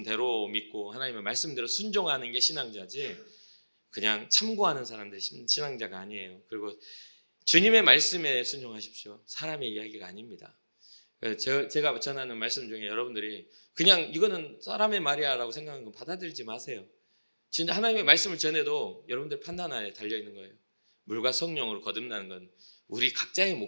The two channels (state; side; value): inverted; both; correlation -1.00